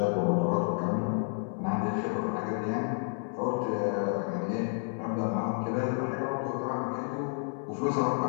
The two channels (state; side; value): silent; right; 56 dB below the other